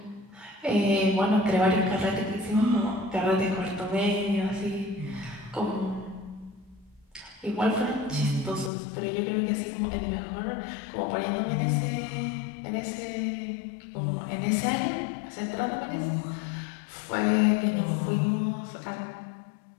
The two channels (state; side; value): drops out; right; at 8.7 s